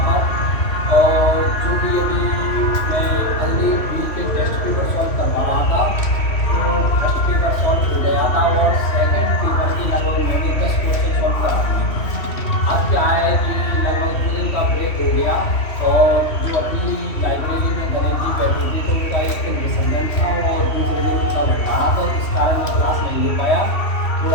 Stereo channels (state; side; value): late; right; 3.1 ms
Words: पर। और जो भी अभी मैं अगली वीक के टेस्ट पेपर सॉल्व करवा रहा था, तो फर्स्ट पेपर सॉल्व हो गया था और सेकंड पेपर की लगभग मैंने 10 क्वेश्चन सॉल्व करा दिए। अब क्या है कि लगभग 2 दिन का ब्रेक हो गया और जो अपनी लाइब्रेरी में गणेश जी बैठे थे तो उनका एक दिन विसर्जन था और दूसरे दिन उनका भंडारा था, इस कारण मैं क्लास नहीं ले पाया,